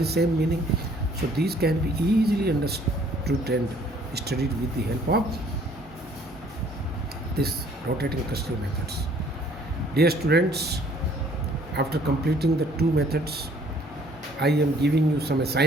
same meaning. So these can be easily understood and studied with the help of this rotating crystal methods. Dear students, after completing the 2 methods, I am giving you some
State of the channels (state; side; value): normal; both; correlation 0.59